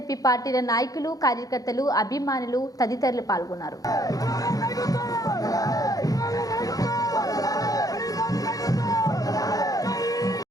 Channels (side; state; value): right; late; 0.17 ms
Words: పార్టీల నాయకులు, కార్యకర్తలు, అభిమానులు తదితరులు పాల్గొన్నారు.